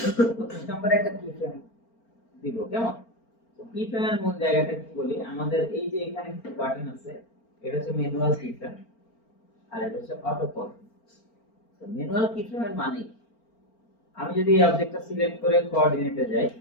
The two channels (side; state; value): right; late; 4.4 ms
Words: নম্বরে একটা কি ফ্রেম দিব, কেমন? তো কি ফ্রেমের মূল জায়গাটা কি বলি, আমাদের এই যে এখানে একটা বাটন আছে, এটা হচ্ছে ম্যানুয়াল কি ফ্রেম, আর এটা হচ্ছে অটো কল। তো ম্যানুয়াল কি ফ্রেমের মানে আমি যদি এই অবজেক্টটা সিলেক্ট করে কোঅর্ডিনেটে যাই,